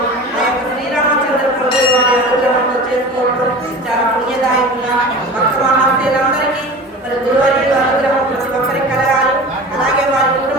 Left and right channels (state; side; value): normal; both; correlation 0.35